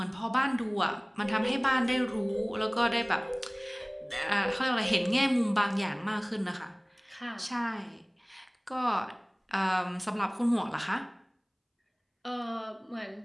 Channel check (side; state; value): both; identical; correlation 1.00